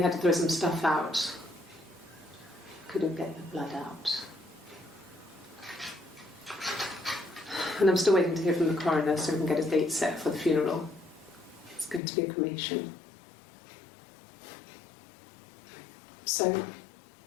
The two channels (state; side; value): drops out; right; at 12.0 s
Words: had to throw some stuff out. Couldn't get the blood out. And I'm still waiting to hear from the coroner so we can get a date set for the funeral. It's going to be a cremation. So...